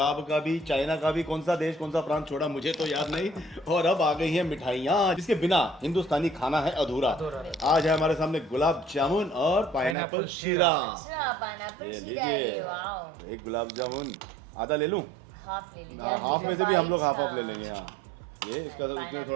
का भी, चाइना का भी, कौन सा देश कौन सा प्रांत छोड़ा मुझे तो याद नहीं। और अब आ गई हैं मिठाइयाँ, जिसके बिना हिंदुस्तानी खाना है अधूरा। आज है हमारे सामने गुलाब जामुन और पाइनएप्पल शीरा। अच्छा, पाइनएप्पल ये शीरा, लीजिए, अरे वाओ। एक गुलाब जामुन आधा ले लूं? हाफ ले लीजिए। हाफ में से भी हम लोग हाफ हाँ। ले लेंगे। हाँ, ये इसका तो इसमें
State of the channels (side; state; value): left; drops out; at 10.0 s